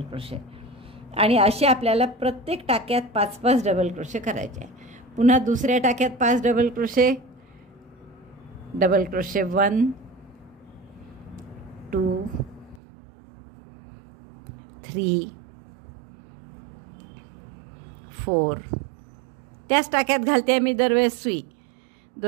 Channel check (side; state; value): left; drops out; at 12.8 s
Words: क्रोशे आणि असे आपल्याला प्रत्येक टाक्यात 5-5 डबल क्रोशे करायचे आहे. पुन्हा दुसऱ्या टाक्यात 5 डबल क्रोशे, डबल क्रोशे 1 2 3 4. त्याच टाक्यात घालते मी दरवेळेस सुई.